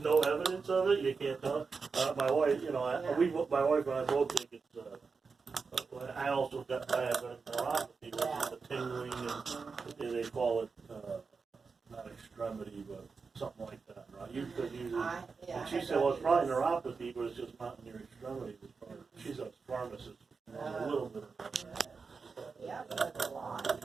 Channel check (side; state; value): left; quieter; 4.9 dB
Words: evidence of it. You can't tell. My wife, my wife and I both think it's. I also got I have neuropathy, which is the tingling, and they call it not extremity, but something like that, right? And she said, well, it's probably neuropathy, but it's just not in your extremities. She's a pharmacist. A little bit of that. Yeah, that's a lot.